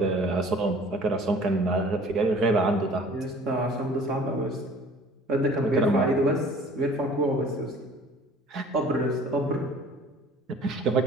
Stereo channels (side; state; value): both; normal; correlation 0.49